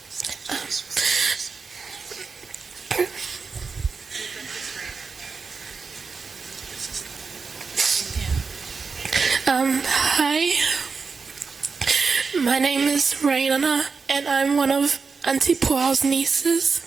Hi, my name is Raina, and I'm one of Auntie Puao's nieces.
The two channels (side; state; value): left; quieter; 4.9 dB